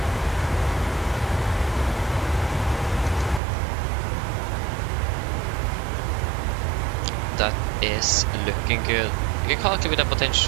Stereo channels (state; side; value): drops out; left; at 3.4 s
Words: That is looking good. You can calculate with a